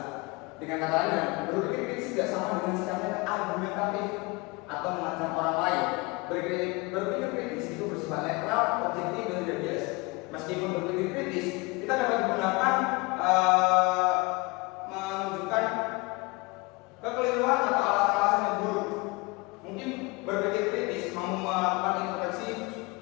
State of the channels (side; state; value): right; quieter; 25.7 dB